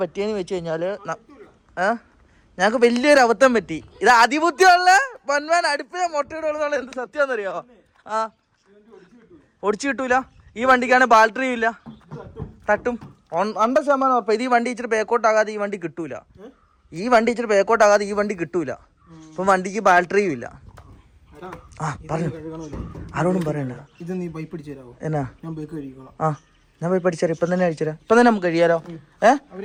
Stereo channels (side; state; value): both; identical; correlation 1.00